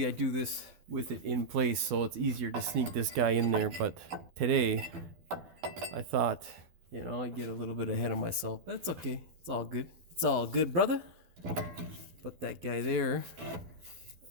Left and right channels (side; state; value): left; late; 12 ms